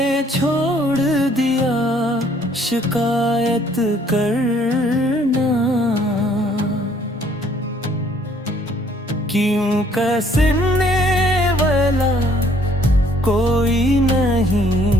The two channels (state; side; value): normal; both; correlation 0.62